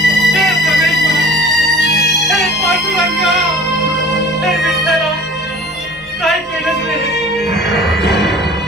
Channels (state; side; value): normal; both; correlation 0.45